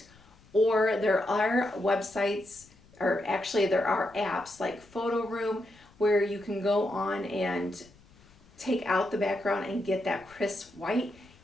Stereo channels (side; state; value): left; noise; rumble, 27 dB below the sound